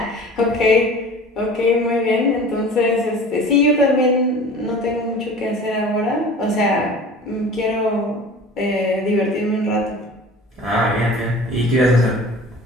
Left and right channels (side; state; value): both; normal; correlation 0.42